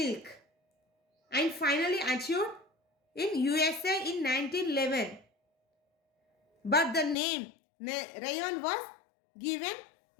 and finally achieved in USA in 1911. But the name rayon was given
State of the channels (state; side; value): drops out; right; at 7.2 s